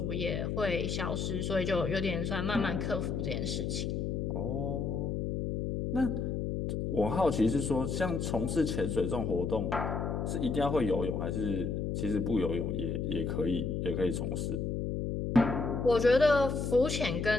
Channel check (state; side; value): noise; left; hum, 1 dB below the sound